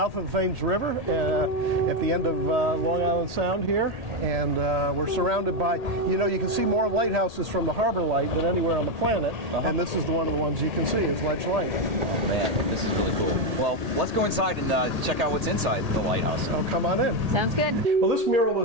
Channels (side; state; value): left; late; 1.8 ms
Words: of the Thames River, at the end of Long Island Sound here, and we're surrounded by, you know, you can see more lighthouses from the harbor light than anywhere on the planet, and this is one of the ones you can see is Ledge Light. Oh, man, this is really cool. Well, let's go inside and check out what's inside the lighthouse. Oh, come on in. Sounds good. Well, this mural